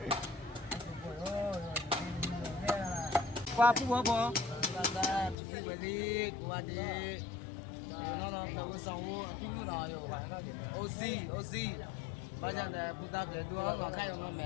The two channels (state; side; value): drops out; right; at 5.4 s